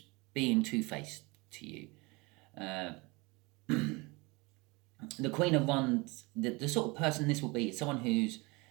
being two-faced to you. The Queen of Wands, the sort of person this will be, is someone who's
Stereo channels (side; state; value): left; quieter; 25.7 dB